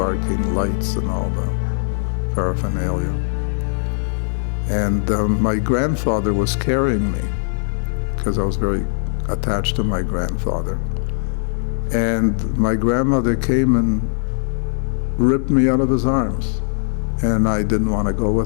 lights, and all the paraphernalia. And my grandfather was carrying me because I was very attached to my grandfather. And my grandmother came and ripped me out of his arms, and I didn't want to go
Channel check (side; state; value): right; silent; digital silence